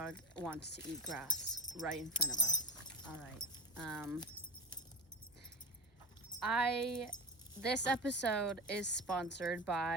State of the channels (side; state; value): both; normal; correlation 0.24